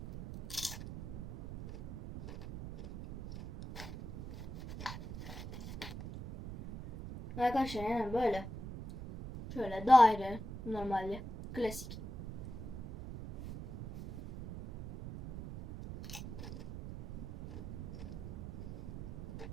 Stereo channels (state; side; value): noise; right; rumble, 9 dB below the sound